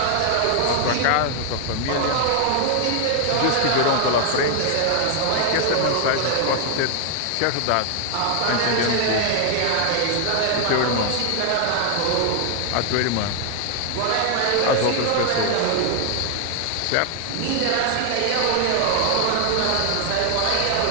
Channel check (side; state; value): both; different; correlation 0.00